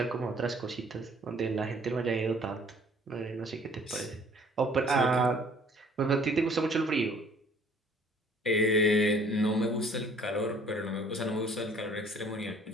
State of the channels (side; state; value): both; normal; correlation 0.56